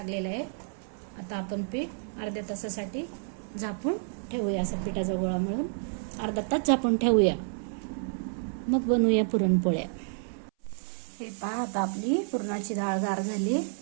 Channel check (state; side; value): silent; left; 58 dB below the other